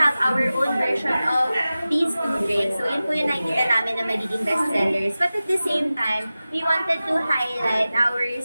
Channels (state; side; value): inverted; both; correlation -0.96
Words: our own version of these two drinks. So yun po yung nakikita namin na magiging bestsellers. But at the same time, we wanted to highlight our